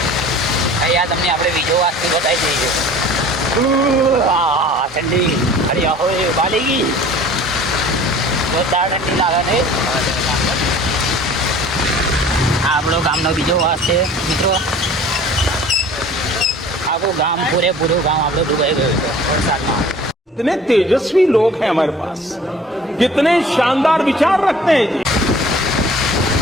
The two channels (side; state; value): both; normal; correlation 0.47